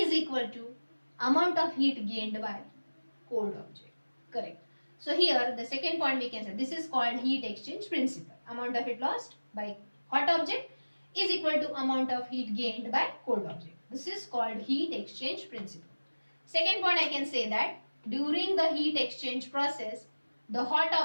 equal to amount of heat gained by cold object. Correct. So here the second point we can say, this is called heat exchange principle. Amount of heat lost by hot object is equal to amount of heat gained by cold object. This is called heat exchange principle. Second point I can say that during the heat exchange process, the hot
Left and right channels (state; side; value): inverted; both; correlation -1.00